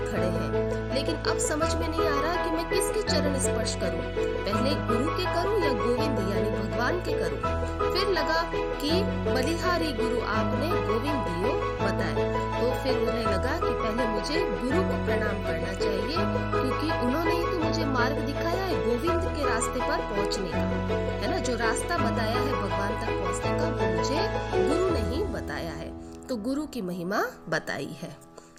खड़े हैं, लेकिन अब समझ में नहीं आ रहा कि मैं किसके चरण स्पर्श करूं, पहले गुरु के करूं या गोविंद यानी भगवान के करूं। फिर लगा कि बलिहारी गुरु आपने, गोविंद दियो बताए। तो फिर उन्हें लगा कि पहले मुझे गुरु को प्रणाम करना चाहिए, क्योंकि उन्होंने ही तो मुझे मार्ग दिखाया है गोविंद के रास्ते पर पहुंचने का, है ना। जो रास्ता बताया है भगवान तक पहुंचने का, वो मुझे गुरु ने ही बताया है। तो गुरु की महिमा बताई है।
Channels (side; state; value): both; identical; correlation 1.00